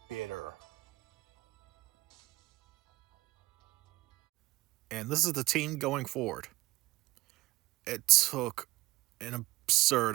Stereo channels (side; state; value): left; quieter; 19.1 dB